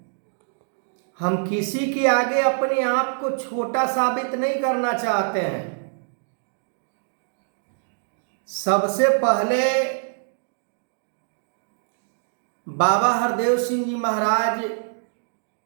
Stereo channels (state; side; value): silent; left; digital silence